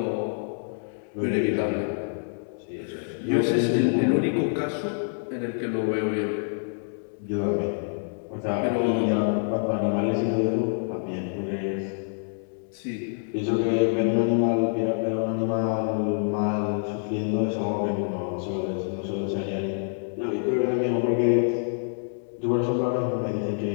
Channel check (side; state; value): right; silent; digital silence